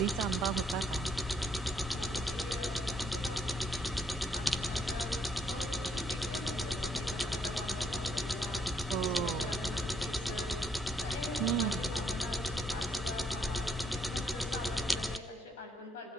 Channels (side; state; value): both; normal; correlation 0.71